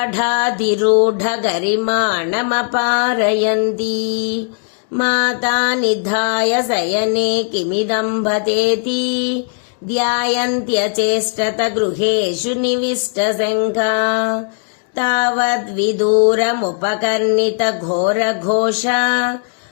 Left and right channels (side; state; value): right; silent; 67 dB below the other